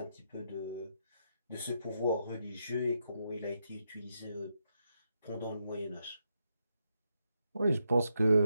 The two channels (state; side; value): inverted; both; correlation -0.82